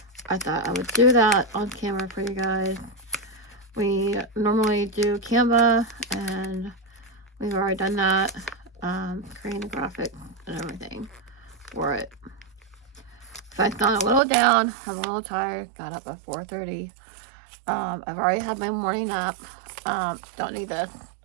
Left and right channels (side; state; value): left; drops out; at 14.2 s